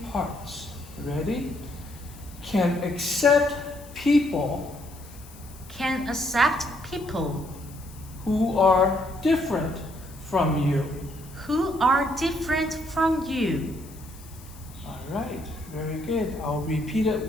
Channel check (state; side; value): noise; left; hiss, 21 dB below the sound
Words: parts. Ready? Can accept people Can accept people who are different from you. who are different from you. All right, very good. I'll repeat it